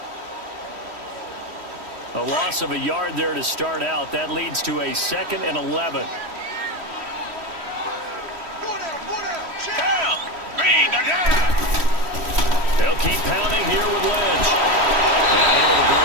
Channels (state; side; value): late; left; 3.1 ms